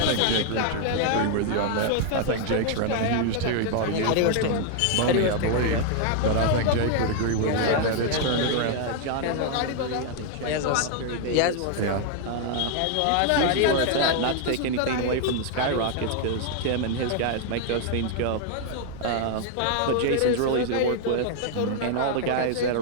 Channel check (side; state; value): both; different; correlation 0.00